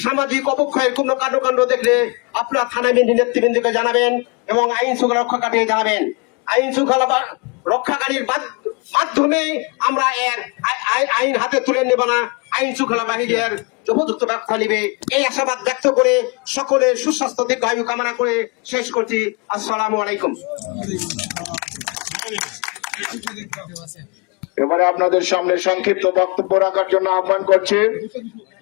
সামাজিক অবক্ষয়ের কোন কাণ্ড দেখলে আপনারা থানা নেতৃবৃন্দকে জানাবেন এবং আইন শৃঙ্খলা রক্ষাকারী জানাবেন। আইন শৃঙ্খলা রক্ষাকারীর মাধ্যমে আমরা এর আইন হাতে তুলে নেব না, আইন শৃঙ্খলা বাহিনীর উপযুক্ত ব্যবস্থা নিবে। এই আশাবাদ ব্যক্ত করে সকলের সুস্বাস্থ্য দীর্ঘায়ু কামনা করে শেষ করছি। আসসালামু আলাইকুম। এবারে আপনাদের সামনে সংক্ষিপ্ত বক্তব্য রাখার জন্য আহ্বান করছি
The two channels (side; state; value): right; quieter; 30.9 dB